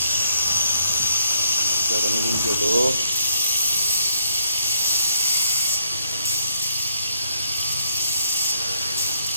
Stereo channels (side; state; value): both; inverted; correlation -0.74